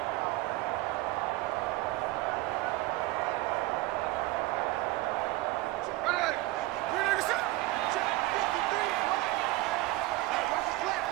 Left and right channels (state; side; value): quieter; left; 18.8 dB